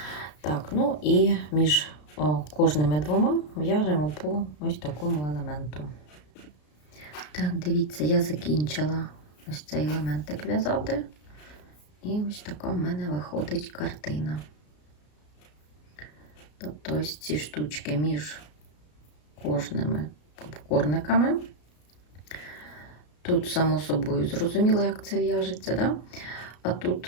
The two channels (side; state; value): right; late; 33 ms